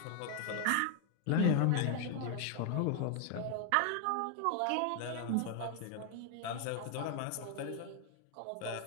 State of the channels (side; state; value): both; different; correlation 0.00